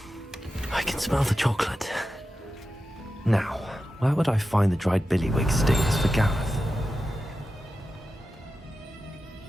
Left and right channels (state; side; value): normal; both; correlation 0.92